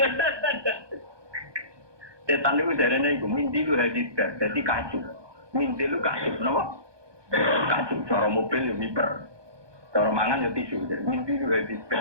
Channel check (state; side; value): late; left; 1.2 ms